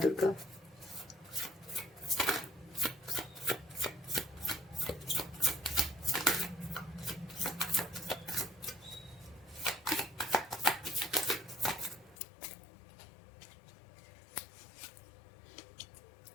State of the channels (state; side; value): drops out; right; at 12.2 s